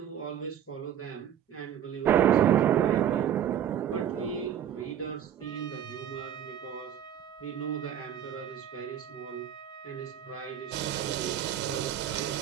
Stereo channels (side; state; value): left; quieter; 9.8 dB